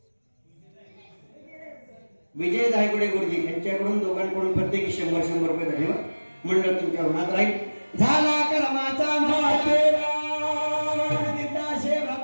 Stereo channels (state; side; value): inverted; both; correlation -1.00